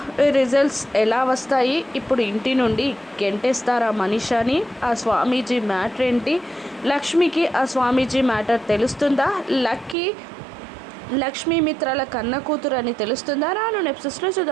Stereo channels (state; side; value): drops out; left; at 10.0 s